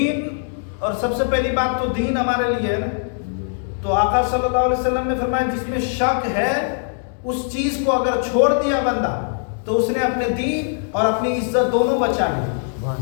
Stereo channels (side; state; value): right; silent; digital silence